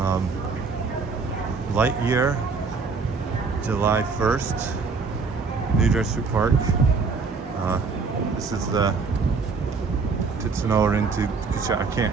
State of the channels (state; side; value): quieter; left; 4.7 dB